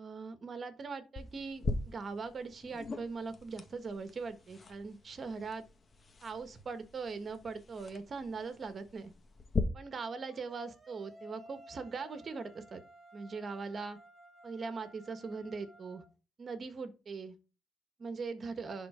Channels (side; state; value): both; normal; correlation 0.81